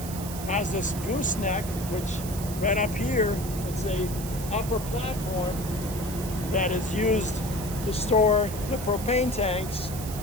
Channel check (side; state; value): right; noise; hiss, 11 dB below the sound